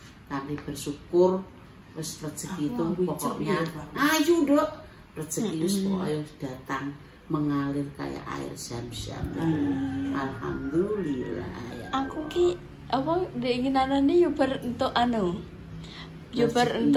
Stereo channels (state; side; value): identical; both; correlation 1.00